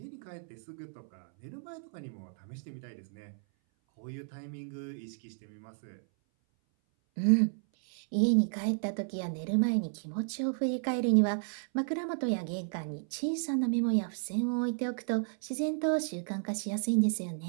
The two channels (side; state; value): left; silent; 56 dB below the other